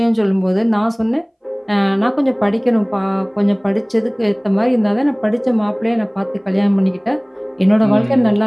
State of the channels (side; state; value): both; identical; correlation 1.00